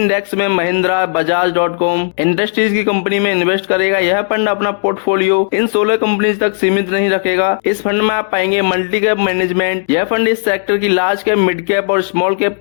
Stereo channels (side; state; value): right; silent; digital silence